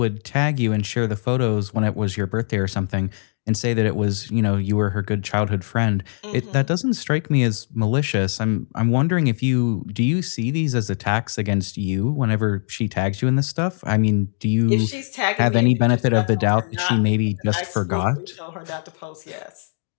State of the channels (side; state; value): right; silent; digital silence